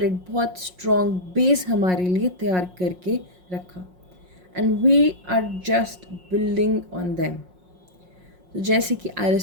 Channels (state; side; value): late; left; 5.5 ms